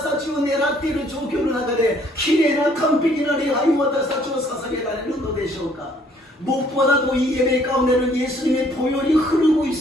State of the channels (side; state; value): both; normal; correlation 0.62